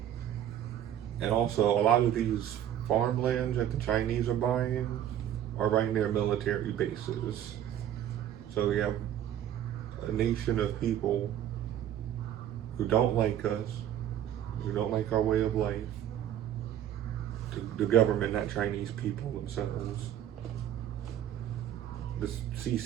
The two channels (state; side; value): quieter; left; 11.0 dB